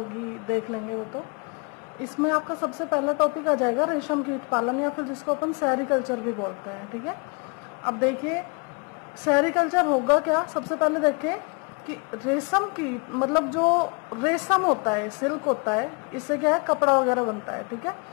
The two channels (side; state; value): right; quieter; 34.3 dB